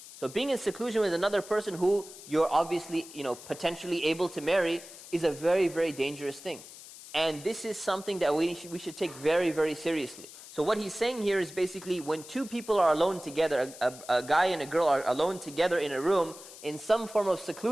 So being in seclusion with another person who you're obviously, potentially able to marry is a very, very dangerous thing. And this is something that we should take very, very seriously. So what he's saying here is basically when 2 people are alone together, a guy and a girl are alone together in a room in some form of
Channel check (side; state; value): left; noise; hiss, 16 dB below the sound